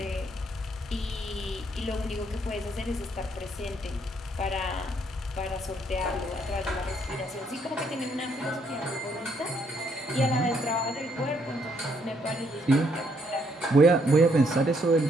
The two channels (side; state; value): both; normal; correlation 0.71